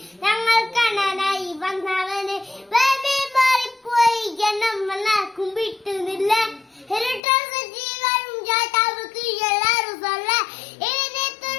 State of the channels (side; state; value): right; drops out; at 7.2 s